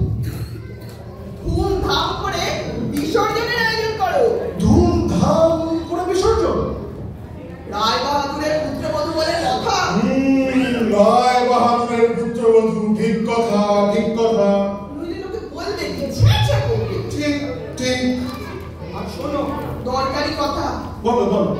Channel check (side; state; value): both; identical; correlation 1.00